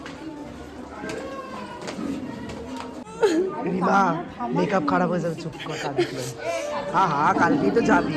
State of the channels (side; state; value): both; identical; correlation 1.00